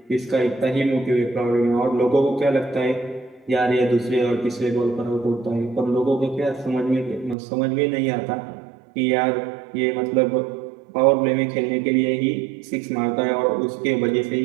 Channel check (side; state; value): left; drops out; at 7.4 s